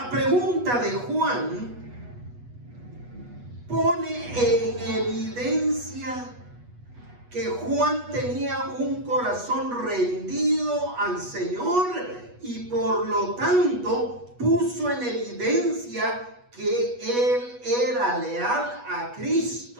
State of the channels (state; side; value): late; left; 8.2 ms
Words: pregunta de Juan pone en evidencia que Juan tenía un corazón rendido al Señor y por lo tanto puso en evidencia que él era leal a